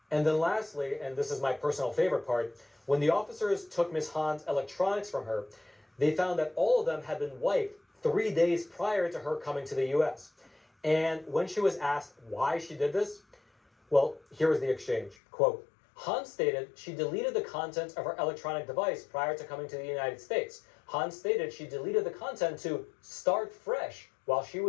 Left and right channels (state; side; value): drops out; right; at 15.2 s